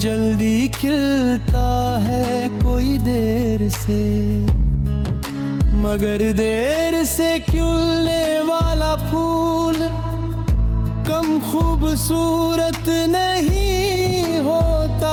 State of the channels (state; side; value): identical; both; correlation 1.00